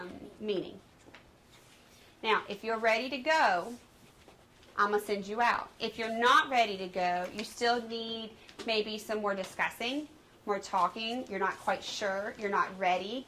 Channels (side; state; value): both; identical; correlation 1.00